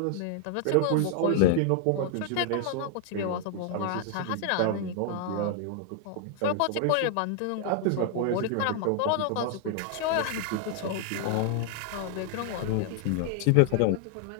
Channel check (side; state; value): both; different; correlation 0.00